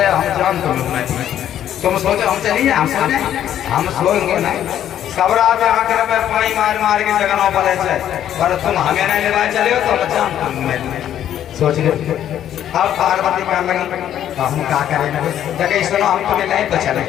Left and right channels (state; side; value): quieter; right; 10.8 dB